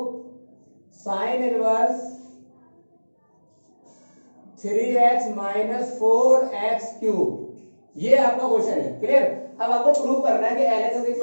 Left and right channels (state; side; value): inverted; both; correlation -1.00